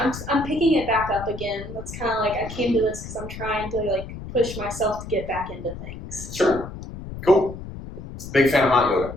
picking it back up again. That's kind of like I came to this because I'm trying to like push myself to get back into things. Sure. Cool. Big fan of hot yoga.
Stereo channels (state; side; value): noise; left; rumble, 11 dB below the sound